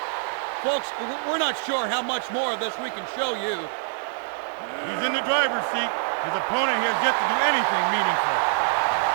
Folks, we're not sure how much more of this we can show you. He's in the driver's seat. His opponent has yet to do anything meaningful.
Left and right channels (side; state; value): left; silent; digital silence